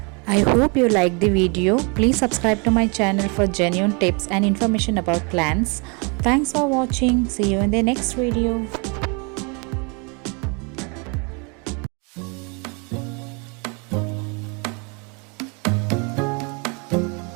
I hope you liked the video. Please subscribe to my channel for genuine tips and information about plants. Thanks for watching. See you in the next video.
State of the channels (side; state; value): left; quieter; 32.9 dB